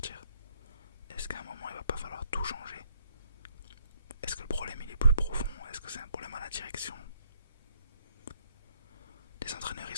Est-ce qu'à un moment il va pas falloir tout changer? Est-ce que le problème il est plus profond? Est-ce que c'est un problème à la direction? Les entraîneurs ils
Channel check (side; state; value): both; inverted; correlation -0.68